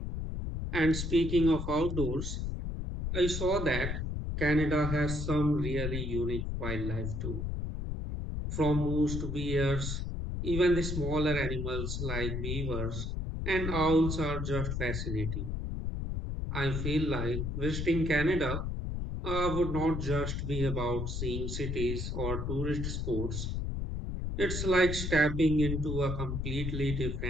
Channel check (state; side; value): noise; left; rumble, 3 dB below the sound